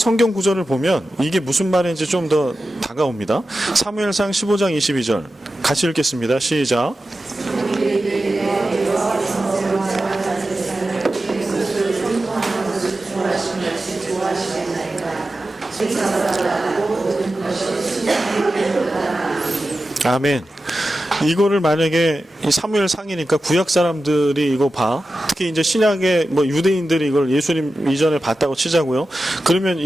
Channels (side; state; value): both; normal; correlation 0.93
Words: 구절을 보면 이게 무슨 말인지 좀 더 다가옵니다. 사무엘상 15장 22절 같이 읽겠습니다. 시작. 아멘. 이거를 만약에 사무엘 상이니까 구약 사람들이 이거 봐. 특히 이제 신약의 유대인들이 이걸 예수님 이전에 봤다고 치자고요. 그러면